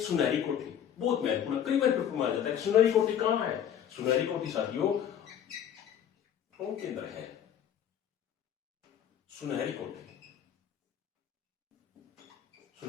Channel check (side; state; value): right; quieter; 9.6 dB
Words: कोठी, बहुत महत्वपूर्ण, कई बार पेपर में आ जाता है। सुनहरी कोठी कहां है? सुनहरी कोठी साथियों टोंक के अंदर है। सुनहरी कोठी,